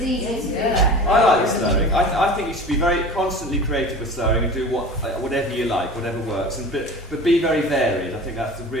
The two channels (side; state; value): both; normal; correlation 0.37